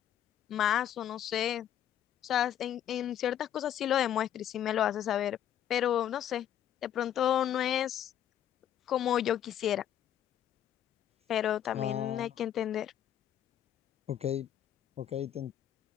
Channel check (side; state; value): right; quieter; 10.6 dB